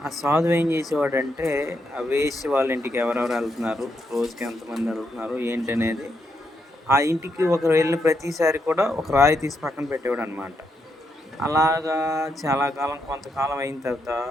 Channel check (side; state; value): both; normal; correlation 0.80